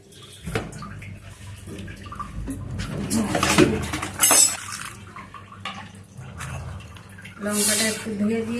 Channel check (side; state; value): both; identical; correlation 1.00